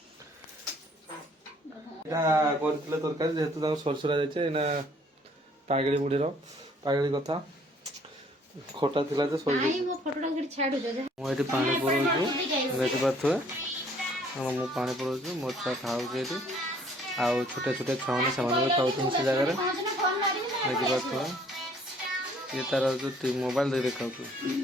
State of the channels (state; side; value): normal; both; correlation 0.60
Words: तरकारी जेहेतु सरसरा जाए पागड़ी मुढ़ीर पागड़ी कथा खटा थिला जे सही मुझे पानी पड़ू देखी पारे मु पानी पड़ू मो छुआ खाऊ आउ छोटे छोटे छुआ मैंने से खाऊ से जगह देखी पारे ये तार जो मोबाइल दे देखा